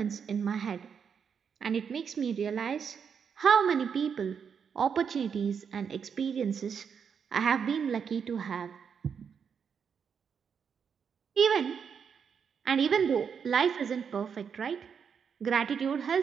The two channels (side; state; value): left; quieter; 6.9 dB